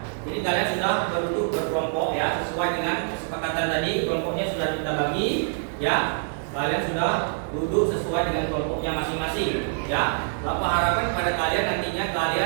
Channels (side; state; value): left; silent; 61 dB below the other